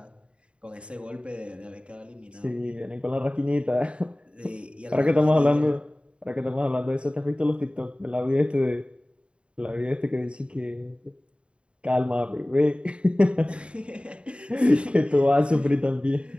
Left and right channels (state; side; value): late; left; 0.057 ms